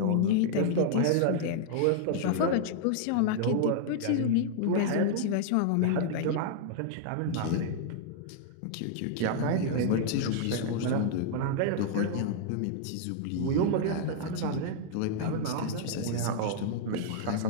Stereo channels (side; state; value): both; different; correlation -0.01